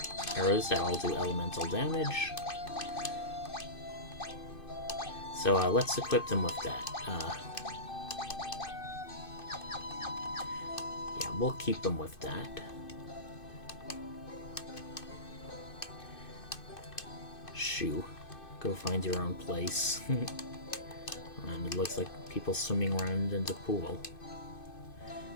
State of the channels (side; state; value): right; late; 2.5 ms